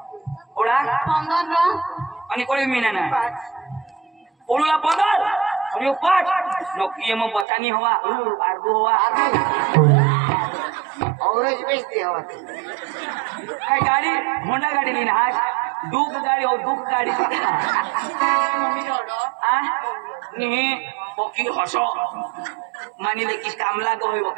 पोळा 15 आणि कोळी मीना ना पोळूला 15 आणि 5 नोकी मग बतानी हवा आरबू हवा औरज बेचते हवा काय गाडी होंडा गाडी लीन आज दुख गाडी हो दुख गाडी नी पोकी हसो मानिले की कामला गहोय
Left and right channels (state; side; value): drops out; left; at 7.5 s